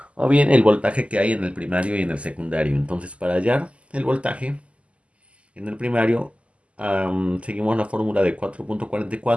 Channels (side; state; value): left; late; 0.059 ms